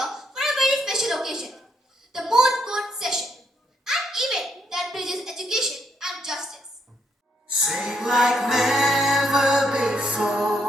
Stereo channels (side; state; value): both; normal; correlation 0.74